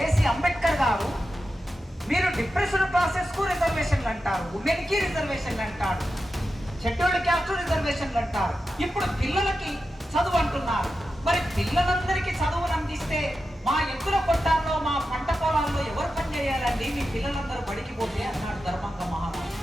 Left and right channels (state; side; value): normal; both; correlation 0.91